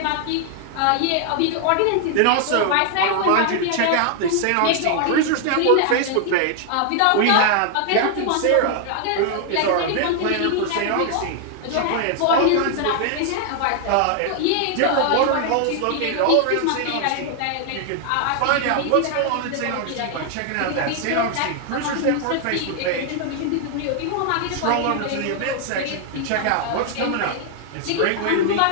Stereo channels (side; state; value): both; different; correlation 0.00